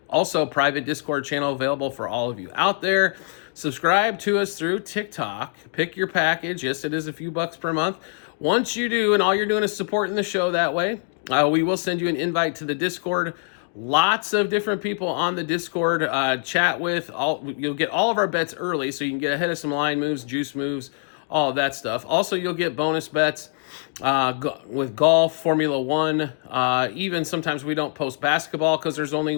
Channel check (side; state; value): right; silent; digital silence